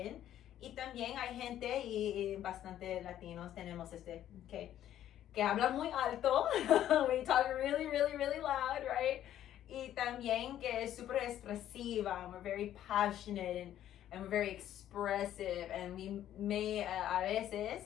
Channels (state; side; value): quieter; right; 11.7 dB